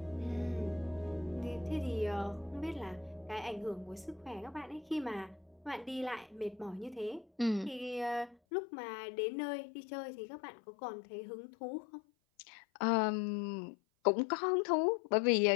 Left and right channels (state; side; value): drops out; right; at 8.3 s